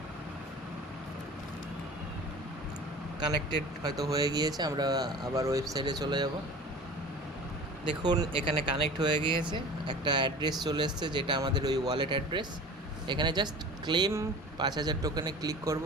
কানেক্টেড হয়তো হয়ে গিয়েছে, আমরা আবার ওয়েবসাইটে চলে যাব। দেখুন এখানে কানেক্ট হয়ে গিয়েছে, একটা অ্যাড্রেস চলে এসছে যেটা আমাদের ওই ওয়ালেট অ্যাড্রেস। এখানে জাস্ট ক্লেম 5000 টোকেনে ক্লিক করব,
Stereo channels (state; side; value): normal; both; correlation 0.40